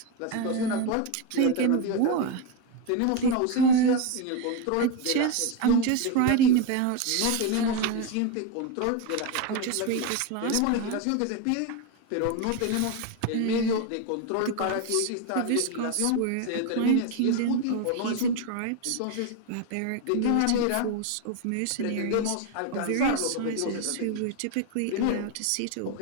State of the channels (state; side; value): different; both; correlation 0.02